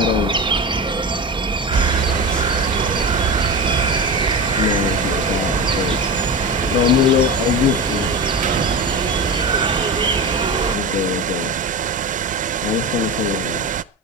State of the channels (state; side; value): normal; both; correlation 0.24